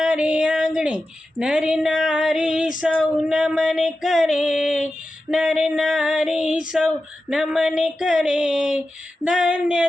આંગણે, નર નારી સૌ નમન કરે, નર નારી સૌ નમન કરે. ધન્ય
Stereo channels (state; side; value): normal; both; correlation 0.92